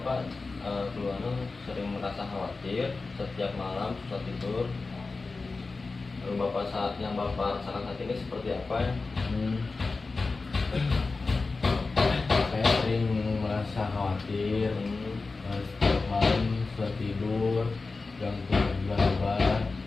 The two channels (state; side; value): quieter; right; 3.9 dB